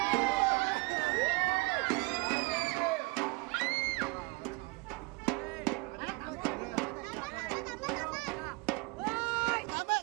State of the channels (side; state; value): left; quieter; 26.3 dB